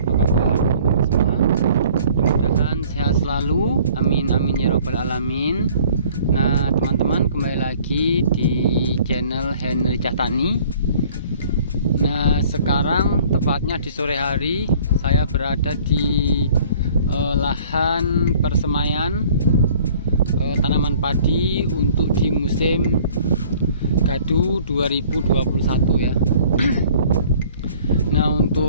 kabar semua? Mudah-mudahan sehat selalu. Amin amin ya robbal alamin. Nah teman-teman, kembali lagi di channel Henry Cahtani. Nah sekarang tepatnya di sore hari saya berada di lahan persemaian tanaman padi untuk di musim gadu 2021 ya. Nah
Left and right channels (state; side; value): inverted; both; correlation -0.53